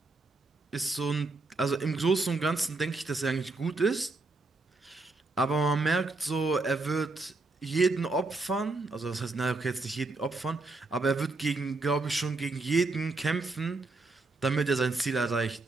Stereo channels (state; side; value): quieter; left; 3.4 dB